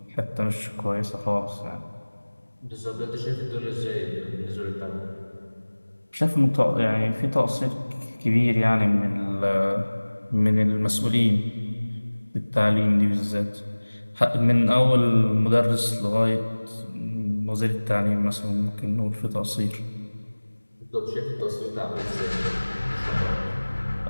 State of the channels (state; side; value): inverted; both; correlation -1.00